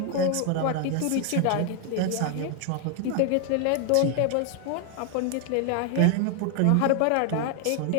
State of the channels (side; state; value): both; different; correlation 0.00